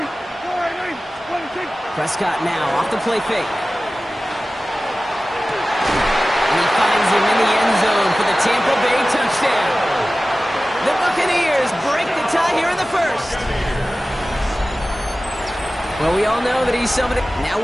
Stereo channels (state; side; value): normal; both; correlation 0.96